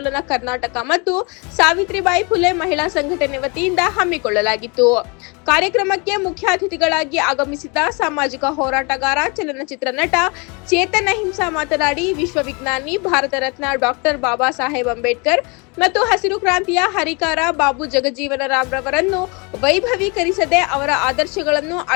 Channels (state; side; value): quieter; right; 30.5 dB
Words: ಕರ್ನಾಟಕ ಮತ್ತು ಸಾವಿತ್ರಿಬಾಯಿ ಫುಲೆ ಮಹಿಳಾ ಸಂಘಟನೆ ವತಿಯಿಂದ ಹಮ್ಮಿಕೊಳ್ಳಲಾಗಿತ್ತು. ಕಾರ್ಯಕ್ರಮಕ್ಕೆ ಮುಖ್ಯ ಅತಿಥಿಗಳಾಗಿ ಆಗಮಿಸಿದ ಸಾಮಾಜಿಕ ಹೋರಾಟಗಾರ, ಚಲನಚಿತ್ರ ನಟ ಚೇತನ್ ಅಹಿಂಸಾ ಮಾತನಾಡಿ, ವಿಶ್ವವಿಜ್ಞಾನಿ ಭಾರತ ರತ್ನ ಡಾಕ್ಟರ್ ಬಾಬಾ ಸಾಹೇಬ್ ಅಂಬೇಡ್ಕರ್ ಮತ್ತು ಹಸಿರು ಕ್ರಾಂತಿಯ ಹರಿಕಾರ ಬಾಬು ಜಗಜೀವನ ರಾಮ್ ರವರನ್ನು ವೈಭವೀಕರಿಸದೆ ಅವರ ಆದರ್ಶಗಳನ್ನು